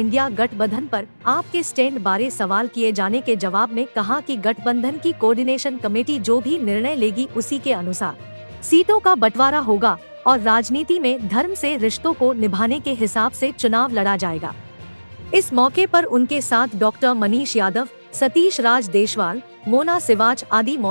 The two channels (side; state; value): both; inverted; correlation -1.00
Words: गठबंधन पर आपके स्टैंड बारे सवाल किए जाने के जवाब में कहा कि गठबंधन की कोऑर्डिनेशन कमेटी जो भी निर्णय लेगी उसी के अनुसार सीटों का बंटवारा होगा और राजनीति में धर्म से रिश्तों को निभाने के हिसाब से चुनाव लड़ा जाएगा। इस मौके पर उनके साथ डॉक्टर मनीष यादव, सतीश राज देशवाल, मोना सिवाच आदि